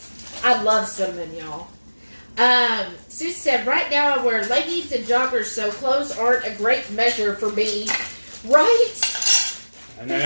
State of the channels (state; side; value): inverted; both; correlation -1.00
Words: I love cinnamon, y'all. Sue said, right now I wear leggings and joggers, so clothes aren't a great measure for me. Right? And then